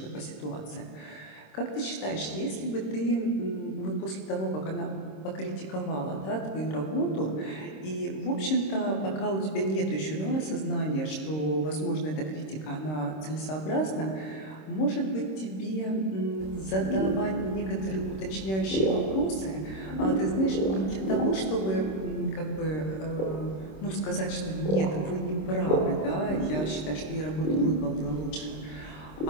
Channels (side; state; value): right; late; 26 ms